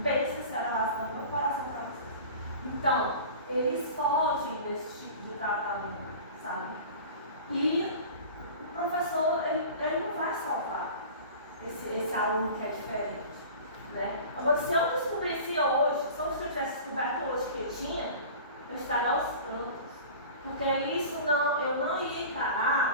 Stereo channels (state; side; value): inverted; both; correlation -0.39